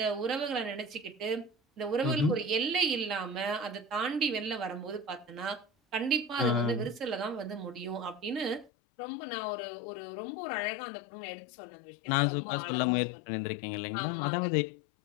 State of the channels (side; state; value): right; drops out; at 8.7 s